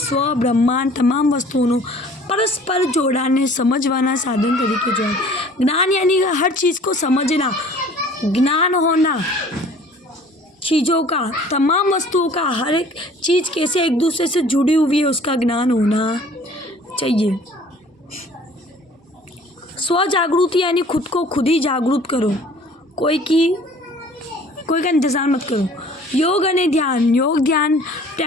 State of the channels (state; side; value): normal; both; correlation 0.51